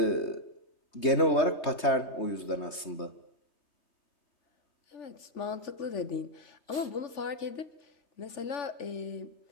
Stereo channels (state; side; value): late; right; 3.2 ms